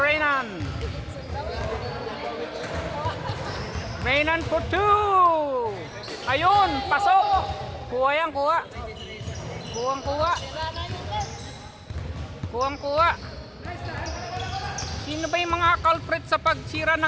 Renan for 2. Ayun, pasok. Kuha. Sino ba yung mga culprit sa pagsira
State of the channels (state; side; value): identical; both; correlation 1.00